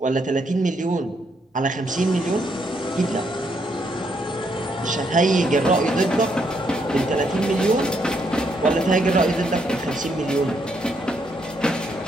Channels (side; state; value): both; normal; correlation 0.75